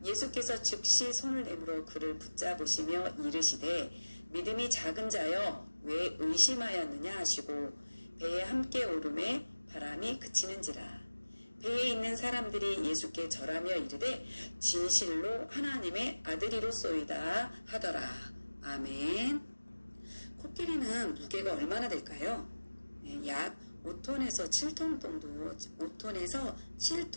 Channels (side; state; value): both; inverted; correlation -1.00